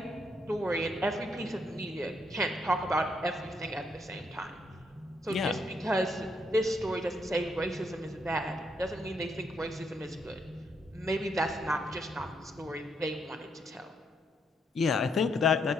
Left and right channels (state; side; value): normal; both; correlation 0.75